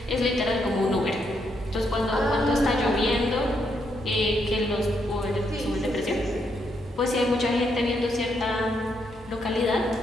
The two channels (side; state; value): both; normal; correlation 0.77